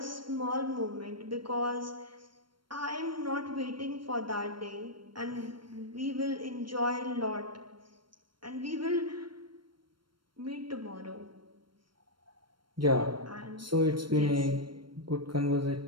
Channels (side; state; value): left; late; 0.72 ms